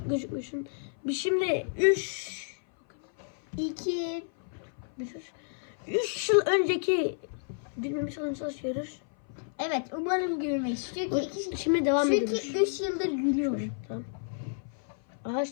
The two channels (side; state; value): right; silent; 56 dB below the other